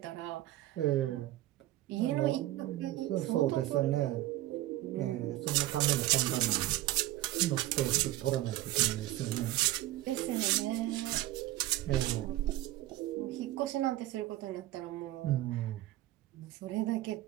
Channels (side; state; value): left; quieter; 15.7 dB